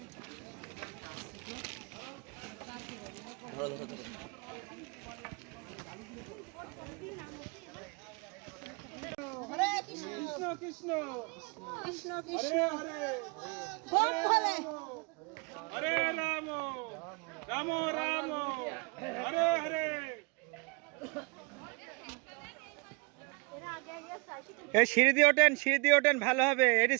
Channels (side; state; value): left; quieter; 31.9 dB